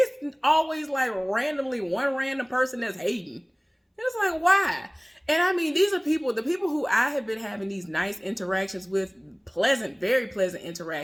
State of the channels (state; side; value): identical; both; correlation 1.00